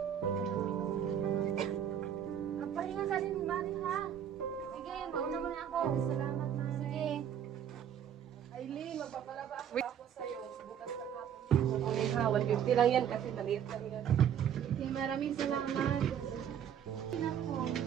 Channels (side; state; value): left; quieter; 9.2 dB